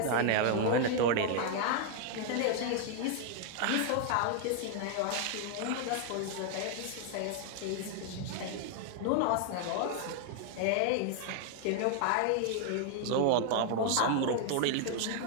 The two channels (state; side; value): different; both; correlation 0.00